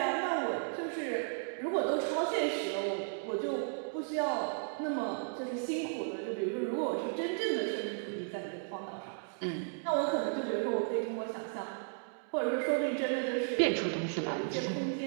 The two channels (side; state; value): left; silent; digital silence